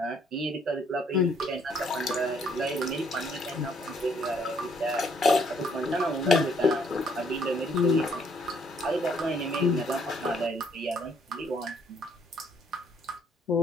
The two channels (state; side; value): normal; both; correlation 0.67